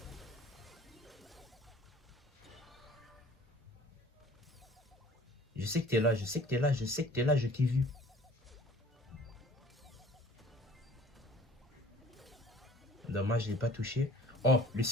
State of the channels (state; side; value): normal; both; correlation 0.50